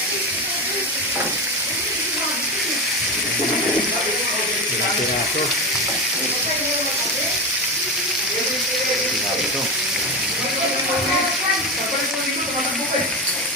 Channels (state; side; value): normal; both; correlation 0.18